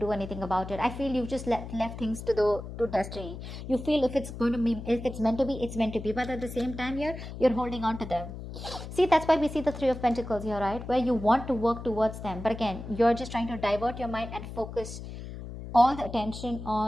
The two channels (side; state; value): left; noise; hum, 10 dB below the sound